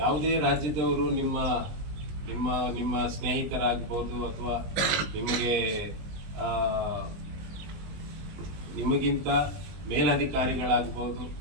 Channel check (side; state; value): left; late; 20 ms